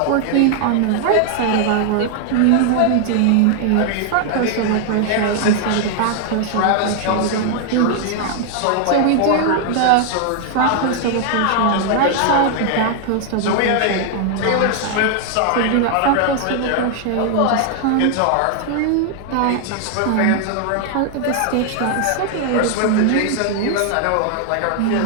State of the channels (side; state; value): both; different; correlation 0.00